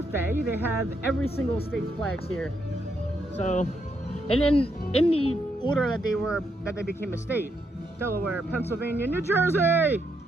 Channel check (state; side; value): normal; both; correlation 0.78